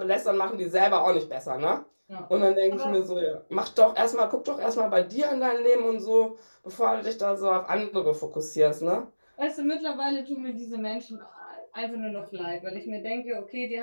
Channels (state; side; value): inverted; both; correlation -1.00